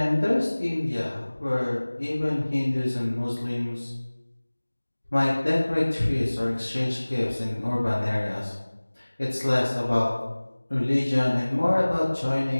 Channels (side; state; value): both; inverted; correlation -1.00